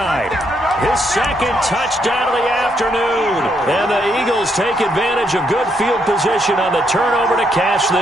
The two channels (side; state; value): both; normal; correlation 0.75